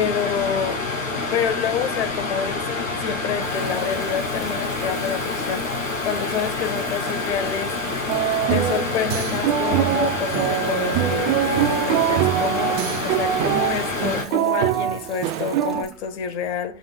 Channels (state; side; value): normal; both; correlation 0.08